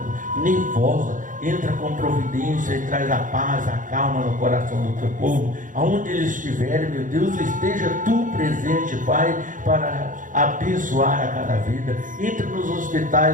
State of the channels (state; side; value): late; left; 0.38 ms